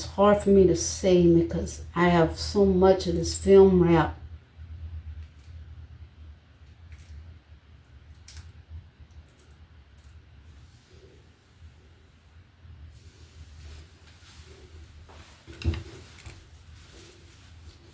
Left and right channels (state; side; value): identical; both; correlation 1.00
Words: hard for me to see because I have so much of this film wrap.